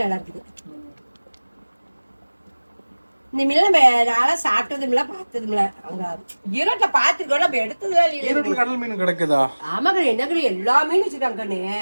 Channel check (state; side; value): inverted; both; correlation -1.00